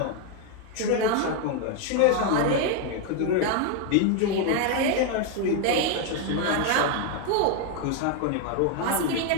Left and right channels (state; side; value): different; both; correlation 0.01